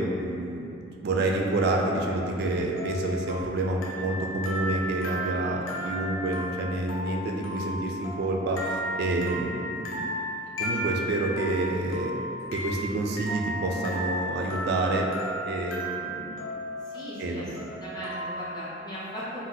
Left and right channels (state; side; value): normal; both; correlation 0.34